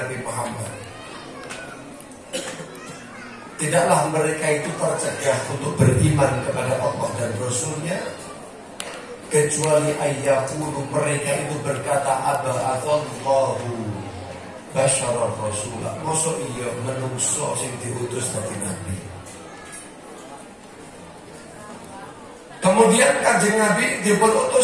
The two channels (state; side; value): identical; both; correlation 1.00